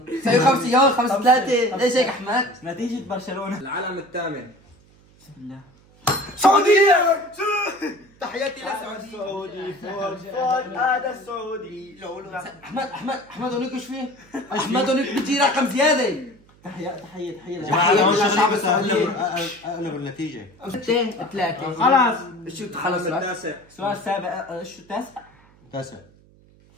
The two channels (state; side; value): noise; right; hum, 28 dB below the sound